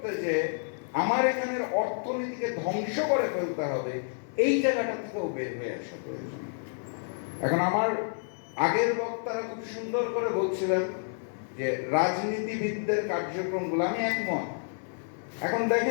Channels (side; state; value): right; silent; digital silence